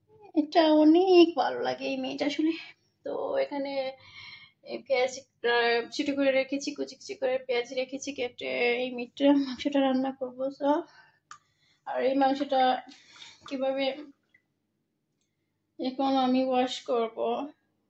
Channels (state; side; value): identical; both; correlation 1.00